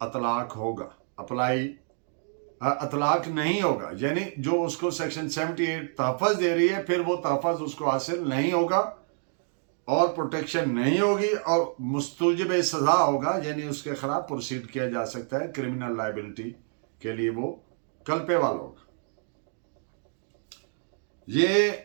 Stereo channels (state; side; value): silent; left; 59 dB below the other